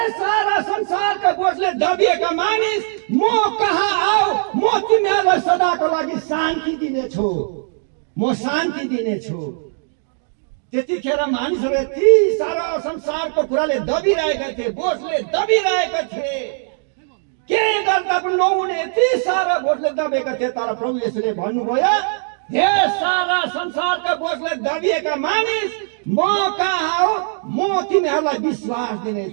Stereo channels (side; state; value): left; silent; digital silence